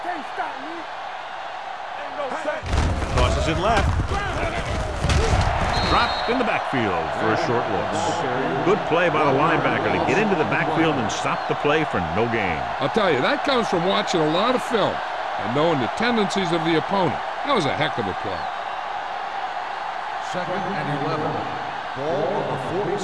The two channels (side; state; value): both; identical; correlation 1.00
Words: can't stop me. Ain't no sense. Tosses it left. Dropped in the backfield for a short loss. Good play by the linebacker to get into the backfield and stop the play for no gain. I'll tell you, that comes from watching a lot of film. and knowing the tendencies of the opponent. That was a heck of a play. 2nd and 11. Ball on the